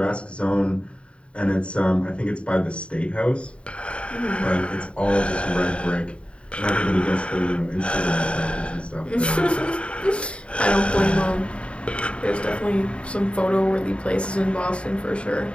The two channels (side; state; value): right; late; 0.058 ms